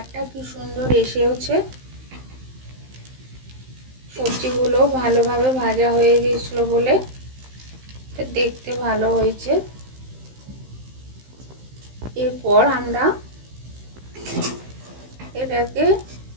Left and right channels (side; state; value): left; late; 15 ms